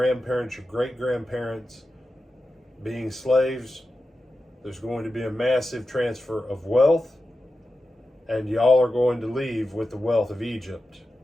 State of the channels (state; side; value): normal; both; correlation 0.91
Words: your great-grandparents being slaves, there's going to be a massive transfer of wealth, and y'all are going to leave with the wealth of Egypt.